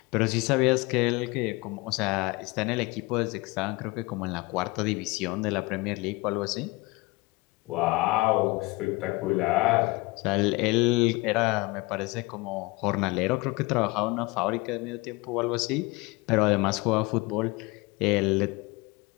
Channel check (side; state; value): right; quieter; 24.0 dB